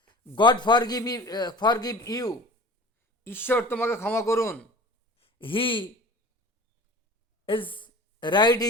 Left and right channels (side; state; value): both; normal; correlation 0.40